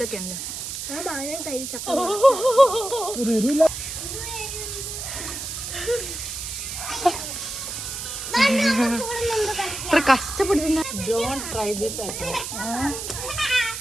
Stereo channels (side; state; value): right; noise; hiss, 6 dB below the sound